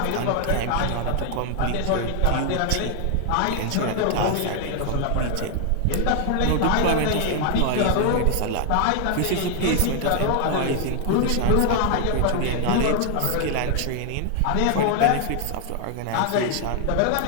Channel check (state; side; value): different; both; correlation 0.00